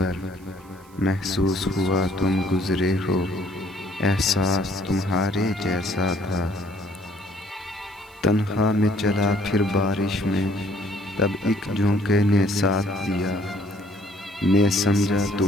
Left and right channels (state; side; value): noise; right; hiss, 28 dB below the sound